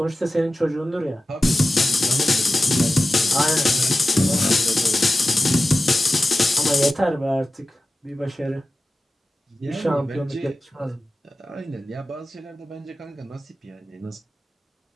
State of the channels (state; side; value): normal; both; correlation 0.94